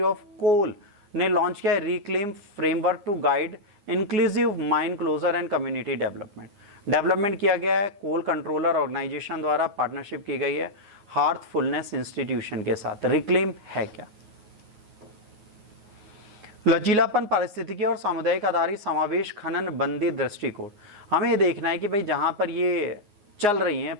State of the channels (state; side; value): late; left; 9.7 ms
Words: ऑफ कोल ने लॉन्च किया है reclaim framework to guide inclusive mine closure and community development किया गया है। कोल कंट्रोलर ऑर्गेनाइजेशन द्वारा पार्टनरशिप की गई है हार्थफुलनेस इंस्टीट्यूशन के साथ। रिक्लेम है क्या? लचीलापन, पारिस्थितिकी और सामुदायिक आधारित समावेश खनन बंदी दृष्टिकोण। हमें ये देखना है कि भाई जहां पर ये चल रही हैं